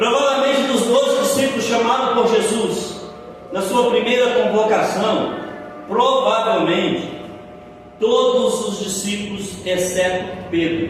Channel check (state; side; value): identical; both; correlation 1.00